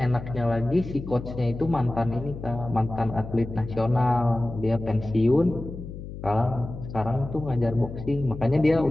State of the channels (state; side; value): noise; left; hum, 11 dB below the sound